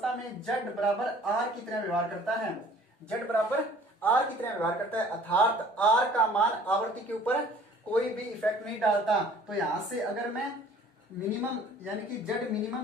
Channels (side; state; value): both; normal; correlation 0.52